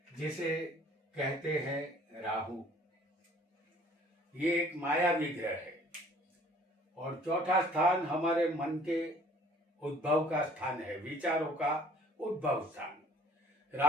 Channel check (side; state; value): both; normal; correlation 0.54